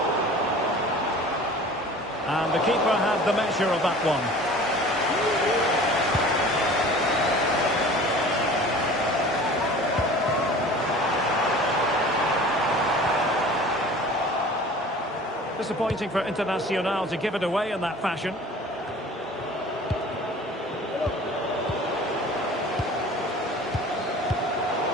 And the keeper had the measure of that one. Disappointing for Internacional to give it away in that fashion.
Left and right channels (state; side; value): normal; both; correlation 0.43